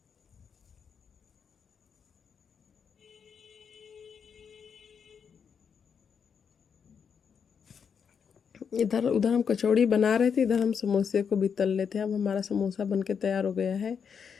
इधर उधर हम कचौड़ी बना रहे थे, इधर हम समोसे को भी तल लेते हैं। अब हमारा समोसा बन के तैयार हो गया है।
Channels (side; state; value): right; quieter; 6.8 dB